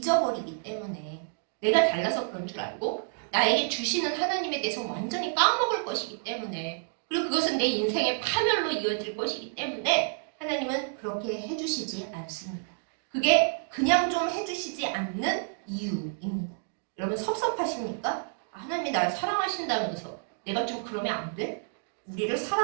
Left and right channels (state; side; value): silent; left; digital silence